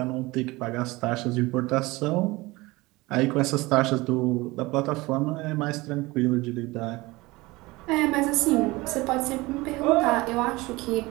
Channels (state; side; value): quieter; left; 21.5 dB